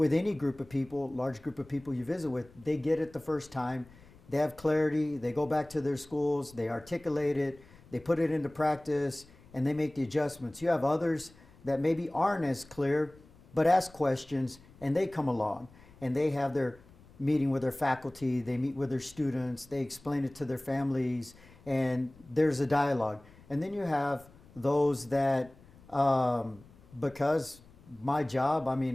any group of people, large group of people you visit with, they get it the first time, they have clarity, they go back to their schools, they articulate it, they put it into practice, and they make the adjustments. You have others that maybe aren't as clear, but ask questions, and they come along, and they have their meeting with their faculty, they meet with their students, they explain it to their families, and there's a dialogue. And then you have those that, because my job, I'm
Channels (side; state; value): left; noise; rumble, 25 dB below the sound